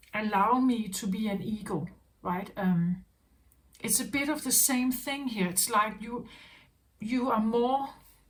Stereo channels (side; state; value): both; identical; correlation 1.00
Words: allow me to be an eagle, right? It's a bit of the same thing here. It's like you're more,